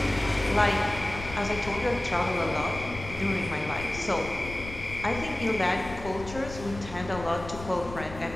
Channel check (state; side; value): noise; left; rumble, 12 dB below the sound